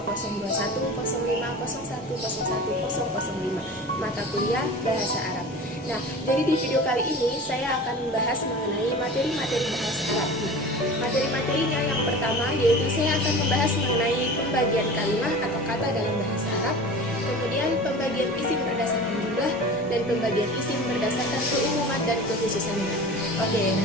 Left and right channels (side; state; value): both; normal; correlation 0.36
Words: mata kuliah Bahasa Arab. Nah, jadi di video kali ini saya akan membahas mengenai materi-materi bahasa Arab. Materi-materinya yang pertama yaitu saya akan membahas mengenai pembagian kalimat atau kata dalam bahasa Arab, kemudian pembagian isim berdasarkan jumlah, dan pembagian isim berdasarkan keumuman dan kekhususannya. Oke,